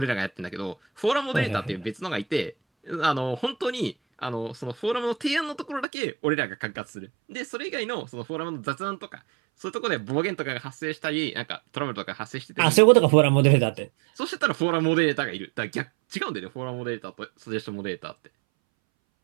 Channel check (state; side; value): drops out; left; at 5.9 s